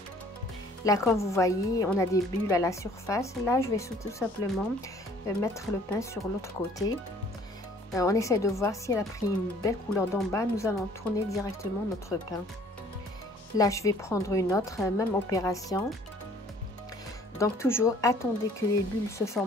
Là, comme vous voyez, on a des bulles à la surface. Là, je vais tout simplement mettre le pain sur l'autre côté. On essaie de voir si elle a pris une belle couleur d'en bas. Nous allons tourner directement notre pain. Là, je vais prendre une autre, même opération. Donc, toujours, attendez que les bulles se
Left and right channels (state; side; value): normal; both; correlation 0.56